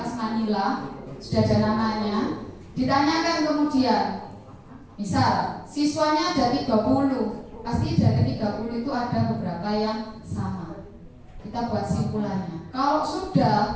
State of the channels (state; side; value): identical; both; correlation 1.00